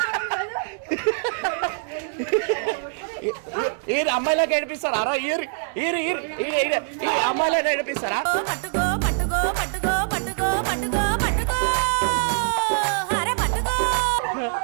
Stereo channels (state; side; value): silent; left; digital silence